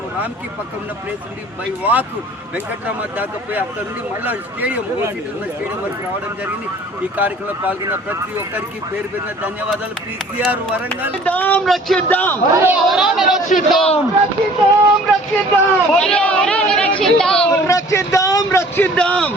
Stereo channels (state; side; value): normal; both; correlation 0.51